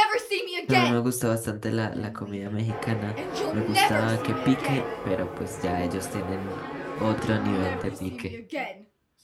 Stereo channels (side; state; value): both; identical; correlation 1.00